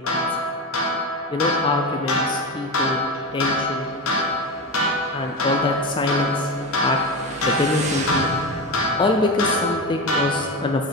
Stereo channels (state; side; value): normal; both; correlation 0.21